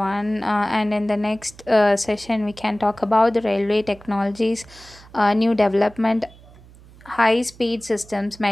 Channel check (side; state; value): right; noise; hum, 23 dB below the sound